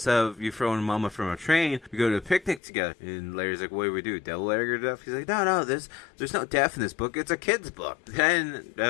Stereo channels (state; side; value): drops out; right; at 2.6 s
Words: of you throwing Mama from a train, we go to a picnic together. And Larry's like, what do we do? Devil Larry or death? He's like, no, there's no death in this book. It's a kid's book. Then,